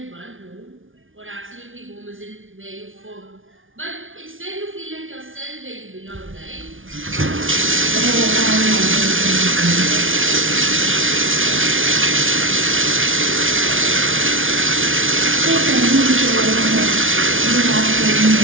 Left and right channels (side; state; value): left; late; 0.57 ms